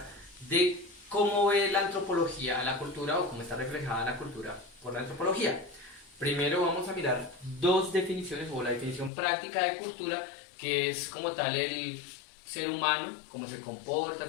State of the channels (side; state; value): right; drops out; at 9.1 s